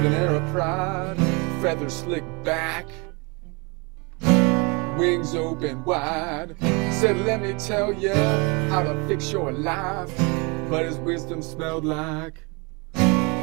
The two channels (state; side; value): quieter; left; 29.8 dB